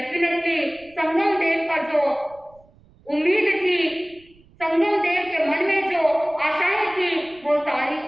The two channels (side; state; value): right; noise; rumble, 29 dB below the sound